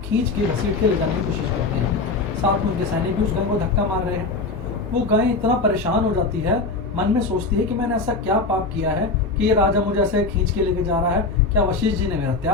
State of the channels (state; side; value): quieter; right; 3.7 dB